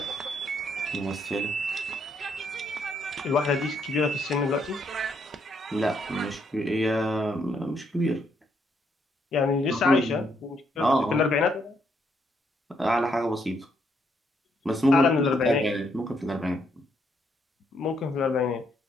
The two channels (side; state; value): both; normal; correlation 0.74